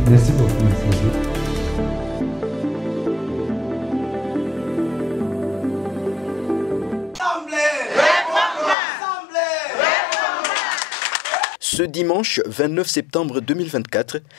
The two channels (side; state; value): right; drops out; at 8.8 s